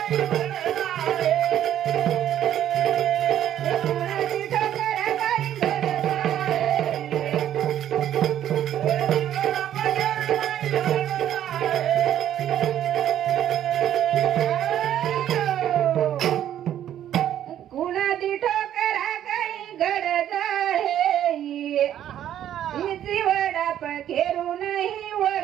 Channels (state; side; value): quieter; left; 11.1 dB